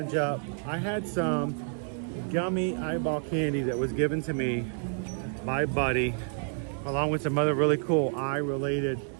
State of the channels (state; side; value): silent; left; 58 dB below the other